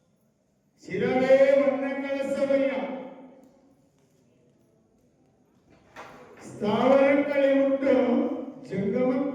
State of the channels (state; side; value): identical; both; correlation 1.00